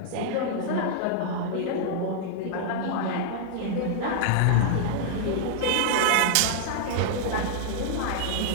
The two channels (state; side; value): different; both; correlation -0.01